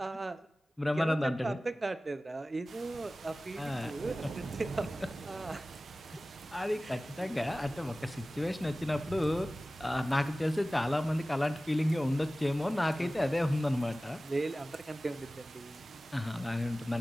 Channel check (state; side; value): normal; both; correlation 0.97